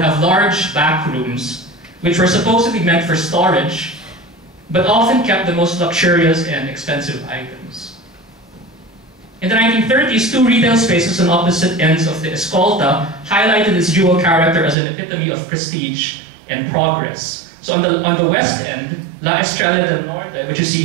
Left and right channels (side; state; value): left; drops out; at 14.8 s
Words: have large back rooms, which were supposedly meant for storage, but often kept the most luxurious and expensive items. In the 1930s, 2 retail spaces on opposite ends of the Escolta highlighted its dual character as an epitome of prestige and progress. So on the west end, La Estrella del Norte, which you see